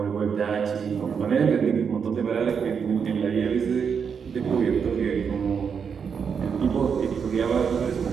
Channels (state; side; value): quieter; left; 6.6 dB